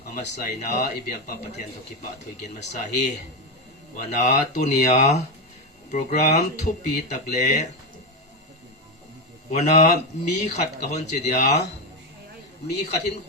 amasai na ibyak pa pathian to kipa thoi gen masahi wana tunia program thupi takle wana mi khat ka hon che dia mi khatin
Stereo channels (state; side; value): normal; both; correlation 0.10